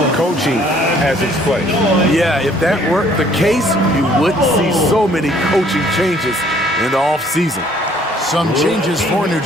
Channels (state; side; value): normal; both; correlation 0.60